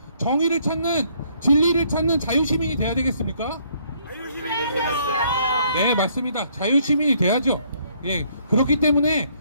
정의를 찾는, 진리를 찾는 자유시민이 돼야 되겠습니까? 네, 맞습니다. 자유시민이 돼야죠. 예, 그렇기 때문에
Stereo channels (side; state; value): both; inverted; correlation -0.67